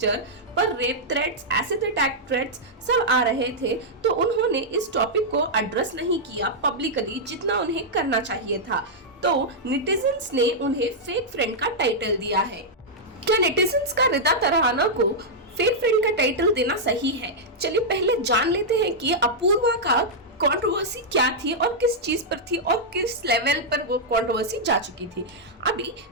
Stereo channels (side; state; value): both; normal; correlation -0.07